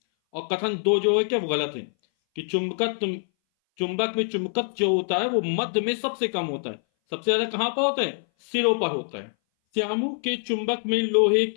और कथन 2 जो है क्या, वो गलत है कि चुंबक में चुंबकत्व जो होता है वो मध्य में सबसे कम होता है। सबसे ज्यादा कहां पर होता है? सिरों पर होता है। श्यामू के चुंबक में लोहे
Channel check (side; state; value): right; silent; 59 dB below the other